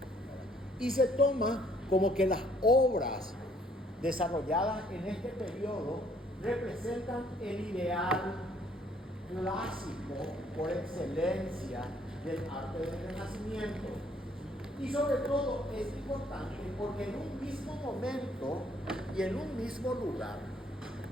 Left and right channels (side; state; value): both; normal; correlation 0.64